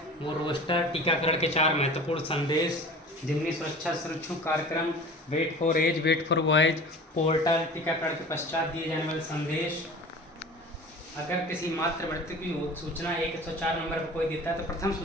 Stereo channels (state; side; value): normal; both; correlation 0.39